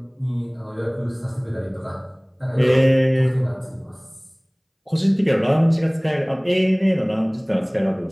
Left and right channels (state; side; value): identical; both; correlation 1.00